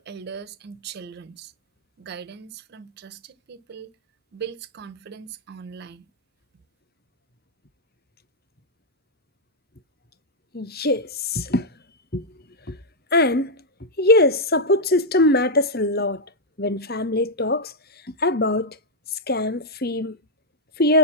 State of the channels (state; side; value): normal; both; correlation -0.04